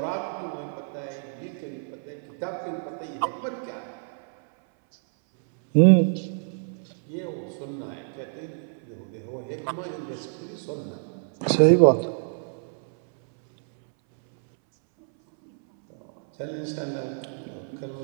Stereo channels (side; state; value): left; silent; 60 dB below the other